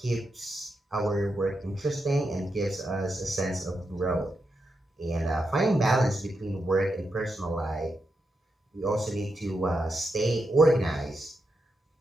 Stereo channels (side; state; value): both; normal; correlation 0.85